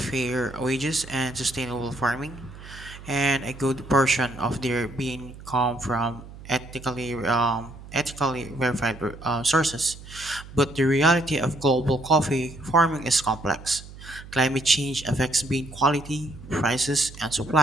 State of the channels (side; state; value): right; noise; hum, 16 dB below the sound